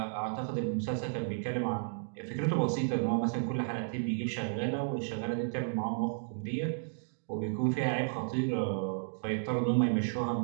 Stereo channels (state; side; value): silent; left; digital silence